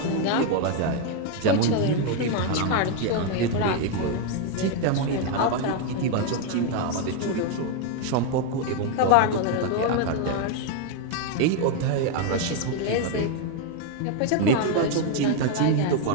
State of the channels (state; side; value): different; both; correlation 0.01